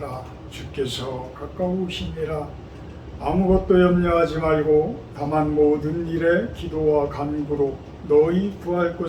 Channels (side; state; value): both; identical; correlation 1.00